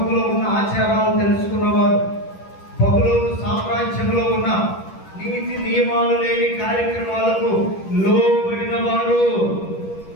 ఉన్న ఆచారాలు తెలుసుకున్నవారు, బబులోను సామ్రాజ్యంలో ఉన్న నీతి నియమాలు లేని కార్యక్రమాలకు లోబడిన వారు,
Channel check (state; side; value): late; right; 10 ms